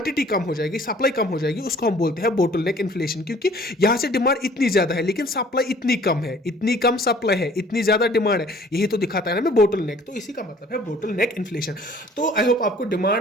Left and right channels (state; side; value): normal; both; correlation 0.54